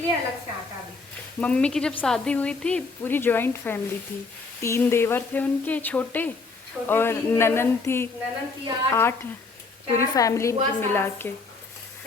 अलग से आटा भी। मम्मी की जब शादी हुई थी पूरी जॉइंट फैमिली थी, 3 देवर थे उनके छोटे, और 3 देवर, ननन थी ननन की 8, पूरी 4 फैमिली बुआ की मिला सास, के।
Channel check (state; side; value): quieter; right; 4.1 dB